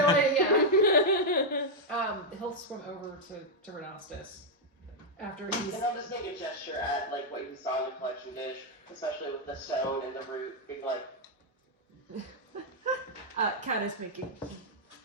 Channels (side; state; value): both; normal; correlation -0.02